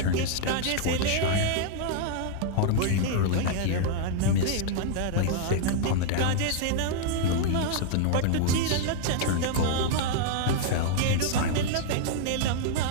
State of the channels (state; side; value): different; both; correlation -0.01